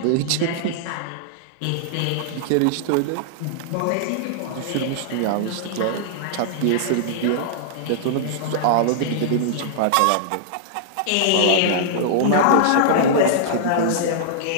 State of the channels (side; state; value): both; different; correlation -0.01